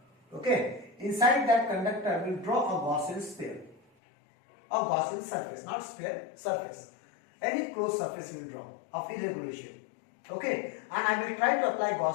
Okay. Inside that conductor we will draw a Gaussian sphere. A Gaussian surface, not sphere, surface. Any closed surface we will draw of irregular shape. Okay, and I will try to apply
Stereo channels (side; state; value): right; drops out; at 3.8 s